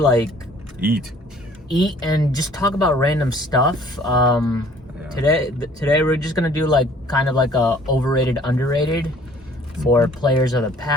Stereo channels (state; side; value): normal; both; correlation 0.55